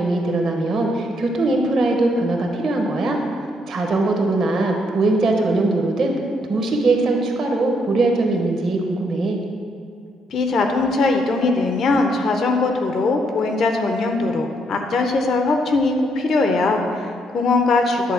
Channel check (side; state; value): both; normal; correlation 0.74